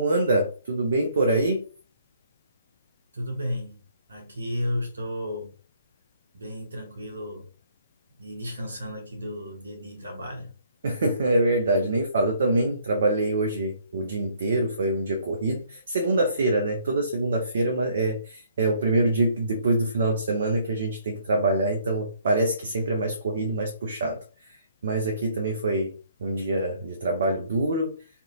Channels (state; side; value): inverted; both; correlation -0.63